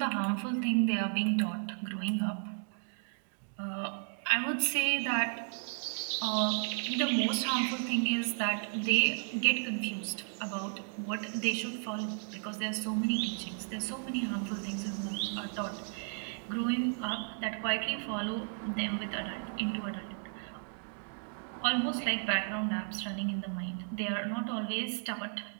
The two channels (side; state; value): left; silent; 55 dB below the other